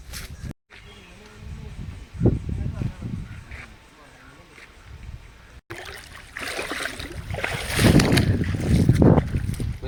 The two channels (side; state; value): both; identical; correlation 1.00